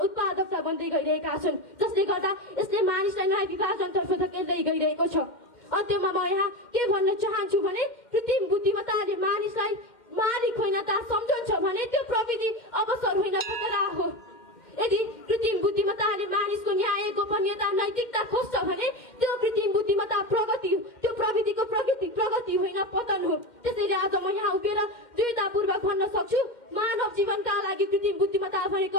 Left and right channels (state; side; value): late; right; 2.1 ms